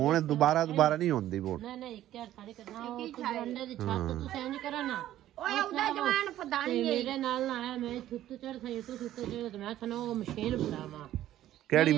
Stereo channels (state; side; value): quieter; left; 13.1 dB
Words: ਦੁਬਾਰਾ ਨਹੀਂ ਹੁੰਦੀ ਬੋਲ। ਨਹੀਂ ਨਹੀਂ ਇੱਕ ਸਾਰੀ ਕਰਨਾ ਉਹ ਅੰਡੇ ਦੀ ਛੱਤ ਤੁਸੀਂ ਇੰਜ ਕਰੋ ਨਾ। ਓਏ ਉਹਦਾ ਜਵਾਨ ਫਦਾਨੀ ਮੇਰੇ ਨਾਲ ਨਾ ਆਇਆ। ਮੈਂ ਥੁੱਤ ਚੜ ਸਹੀ ਤੂੰ ਥੁੱਤ ਚੜ ਤੇ ਮੈਂ ਤੁਹਾਨੂੰ ਉਹ ਮਸ਼ੀਨ ਫੜਾਵਾਂ। ਕਿਹੜੀ